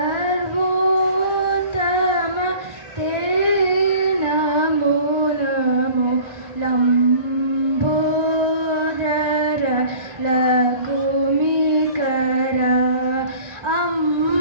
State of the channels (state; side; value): late; left; 1.4 ms